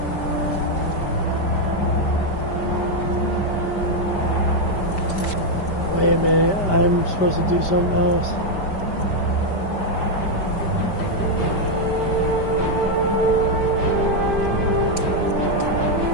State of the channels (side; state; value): right; late; 5.1 ms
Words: Wait a minute, I'm supposed to do something else.